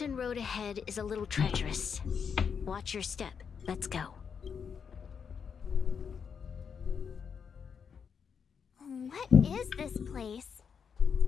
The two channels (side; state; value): right; quieter; 6.7 dB